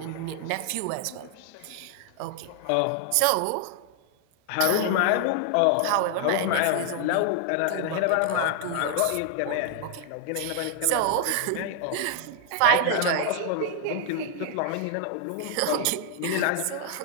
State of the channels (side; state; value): both; different; correlation 0.00